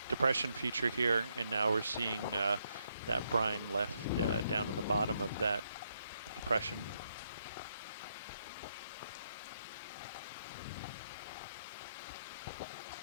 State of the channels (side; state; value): both; inverted; correlation -0.77